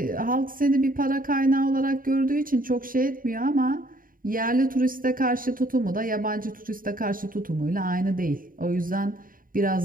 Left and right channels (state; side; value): late; left; 0.41 ms